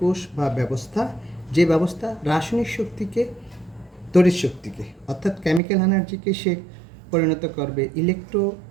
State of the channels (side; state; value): left; drops out; at 5.6 s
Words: কোষ বা ব্যবস্থা, যে ব্যবস্থা রাসায়নিক শক্তিকে তড়িৎ শক্তিকে অর্থাৎ কেমিক্যাল এনার্জিকে সে পরিণত করবে